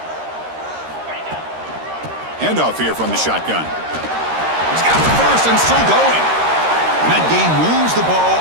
Handoff here from the shotgun. He's got the first and still going. And that game moves the ball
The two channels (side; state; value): left; late; 13 ms